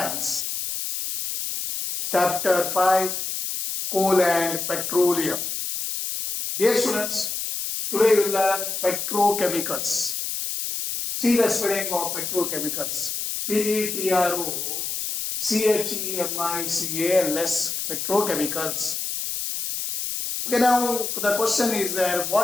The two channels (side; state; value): left; noise; hiss, 3 dB below the sound